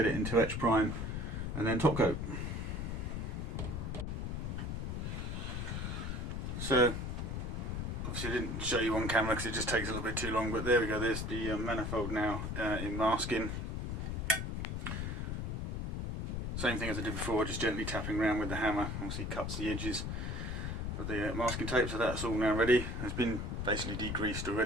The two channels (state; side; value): noise; left; rumble, 3 dB below the sound